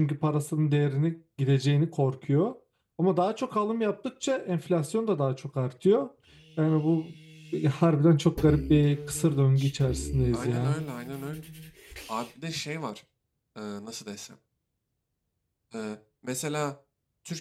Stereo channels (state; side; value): identical; both; correlation 1.00